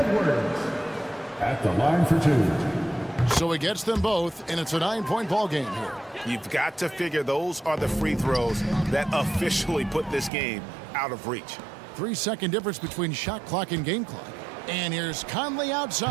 at the line for 2. So he gets them both, and it's a 9-point ball game here. You've got to figure those are the free throws that officially put this game out of reach. 3-second difference between shot clock and game clock. And here's Conley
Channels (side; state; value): left; drops out; at 10.3 s